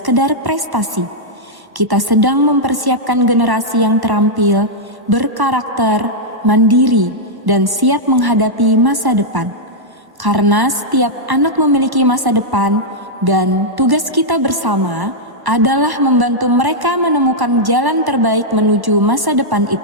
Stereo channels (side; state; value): left; late; 1.1 ms